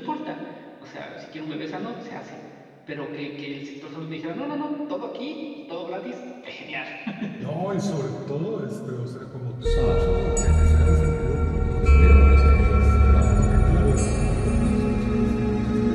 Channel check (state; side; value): identical; both; correlation 1.00